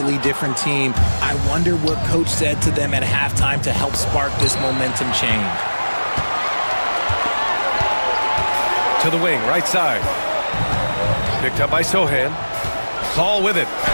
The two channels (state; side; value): inverted; both; correlation -1.00